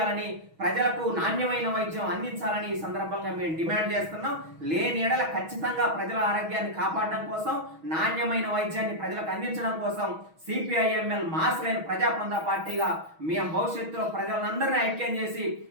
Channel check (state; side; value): late; left; 6.3 ms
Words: ప్రజలకు నాణ్యమైన వైద్యం అందించాలని ఈ సందర్భంగా మేము డిమాండ్ చేస్తున్నాం. లేని ఎడల ఖచ్చితంగా ప్రజల ఆరోగ్యాన్ని కాపాడడం కోసం, నాణ్యమైన వైద్యాన్ని ప్రజలకు అందించడం కోసం సిపిఐఎంఎల్ మాస్ లైన్ ప్రజాపందా పార్టీగా మేము భవిష్యత్తులో ప్రజలందరినీ ఐక్యం చేసి